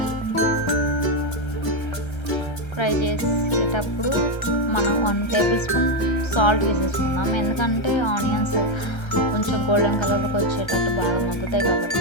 ఫ్రై చేసేటప్పుడు మనం 1 టేబుల్ స్పూన్ సాల్ట్ వేసేసుకుందాం. ఎందుకంటే ఆనియన్స్ కొంచెం గోల్డెన్ కలర్లోకి వచ్చేటట్టు బాగా మగ్గుతాయి కాబట్టి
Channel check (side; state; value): right; late; 1.3 ms